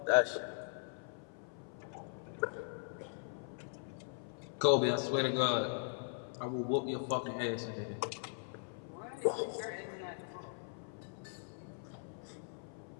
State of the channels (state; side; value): silent; right; 51 dB below the other